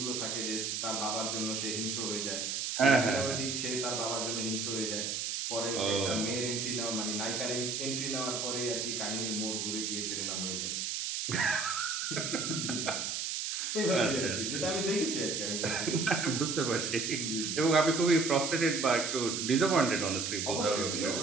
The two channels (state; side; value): noise; right; hiss, 2 dB below the sound